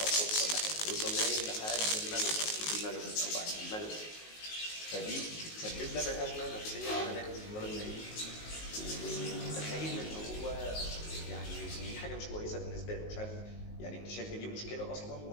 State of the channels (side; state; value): right; late; 19 ms